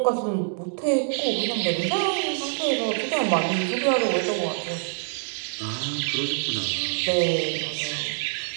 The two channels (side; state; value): left; silent; 61 dB below the other